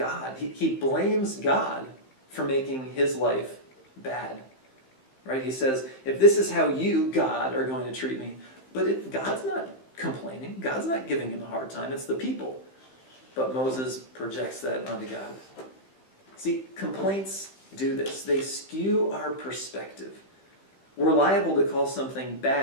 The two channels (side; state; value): right; late; 15 ms